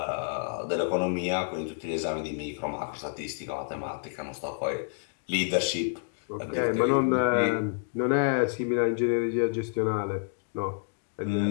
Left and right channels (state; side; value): silent; right; digital silence